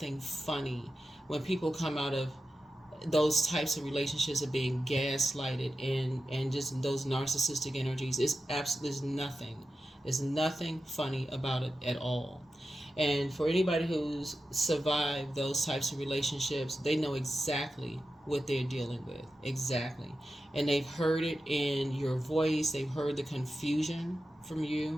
funny when people come out of those types of relationships of being gaslighted and just those narcissistic energies. It's absolutely nothing. There's nothing funny about it at all. And for anybody who's survived those types of relationships, they know exactly what they're dealing with. Exactly. And they've heard it in your voice. They've heard the confusion from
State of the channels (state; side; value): normal; both; correlation 0.92